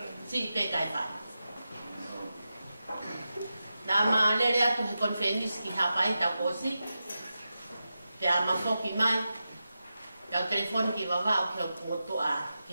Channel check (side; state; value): both; inverted; correlation -0.91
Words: si pe kai whai nā maa lere atu he konfenis ki hapai ta kosi te a mafoki mai kau telefon ki wawa o ke